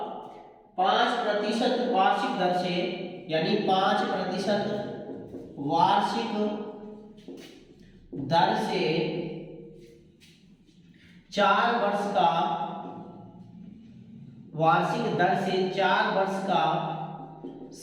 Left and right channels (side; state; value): both; identical; correlation 1.00